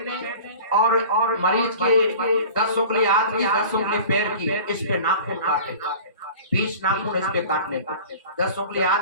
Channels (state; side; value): inverted; both; correlation -0.40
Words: और मरीज के 10 उंगली हाथ की 10 उंगली पैर की इस पे नाखून काटे। 20 नाखून इस पे काटने का, 10 उंगली